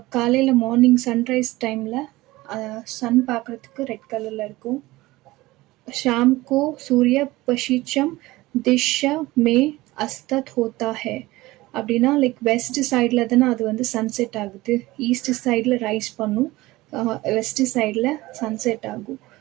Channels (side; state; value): left; quieter; 19.1 dB